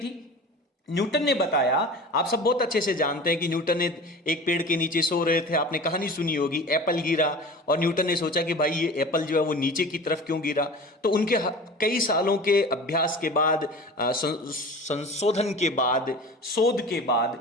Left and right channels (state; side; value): normal; both; correlation 0.37